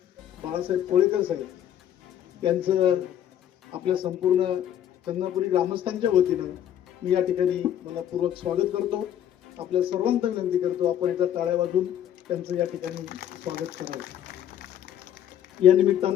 बाळासाहेब कोळेकर साहेब यांचं आपल्या संपूर्ण चंदनापुरी ग्रामस्थांच्या वतीनं मी या ठिकाणी मनपूर्वक स्वागत करतो। आपल्या सर्वांना विनंती करतो आपण एका टाळ्या वाजवून त्यांचं या ठिकाणी स्वागत करावं। या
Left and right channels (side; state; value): right; quieter; 10.5 dB